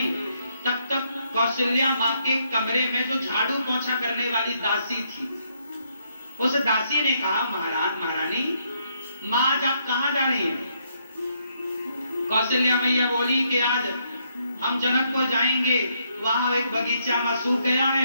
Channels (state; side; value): inverted; both; correlation -0.72